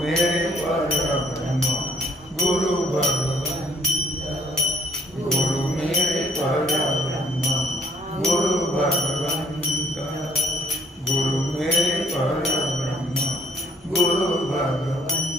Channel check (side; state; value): both; normal; correlation 0.63